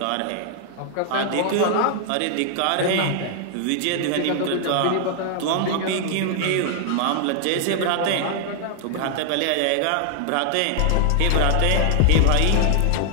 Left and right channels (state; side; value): different; both; correlation 0.00